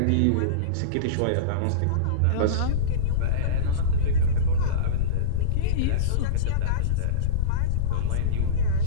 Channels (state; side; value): different; both; correlation -0.06